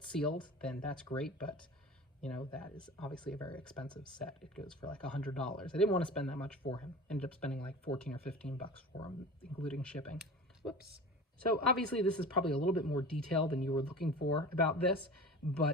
sealed, then that's great, but you know, that is obviously a very expensive set. It goes for like $100. I didn't want to spend that much for him. Ended up spending like 14 or 15 bucks for him, including shipping. Whoops. So obviously this is probably a little bit more detail than you were looking for about this,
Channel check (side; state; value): both; normal; correlation 0.36